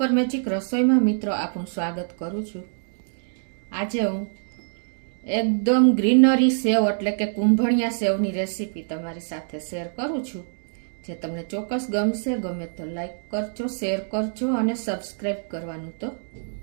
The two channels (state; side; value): silent; left; digital silence